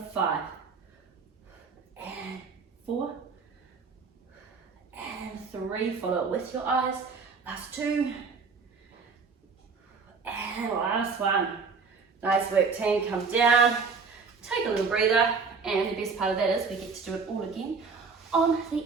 5, and 4, and 3. Follow it with your eyes. Last 2, and last 1. Nice work, team. Come down, take a little breather, and the best part of that is we get to do it all again on the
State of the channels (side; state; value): left; quieter; 4.8 dB